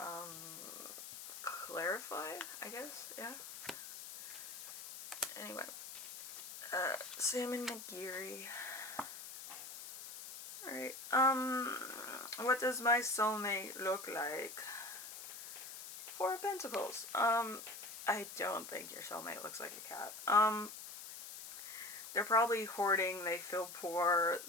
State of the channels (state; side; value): noise; left; hiss, 11 dB below the sound